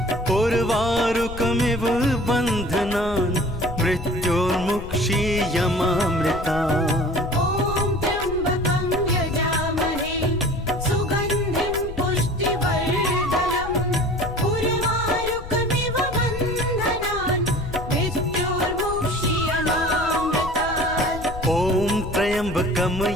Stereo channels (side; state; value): left; noise; rumble, 11 dB below the sound